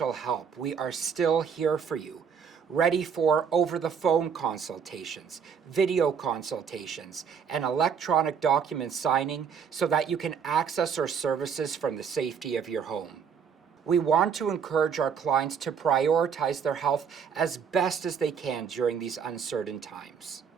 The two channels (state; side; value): quieter; left; 6.9 dB